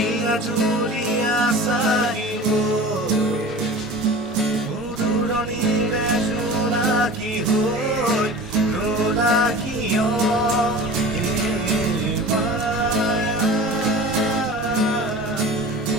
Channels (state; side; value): normal; both; correlation 0.37